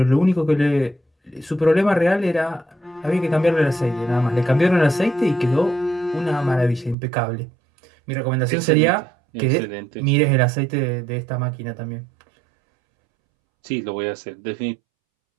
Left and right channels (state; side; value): drops out; left; at 7.0 s